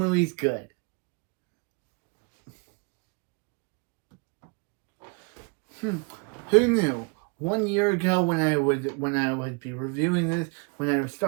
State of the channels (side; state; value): left; quieter; 32.8 dB